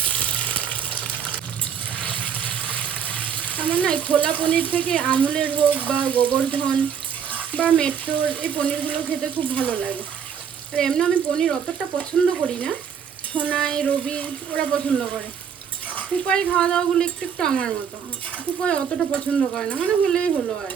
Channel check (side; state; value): left; quieter; 7.6 dB